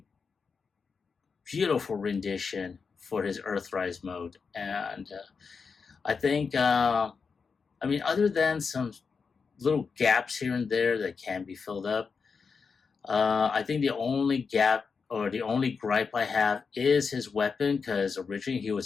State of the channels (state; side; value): quieter; right; 5.3 dB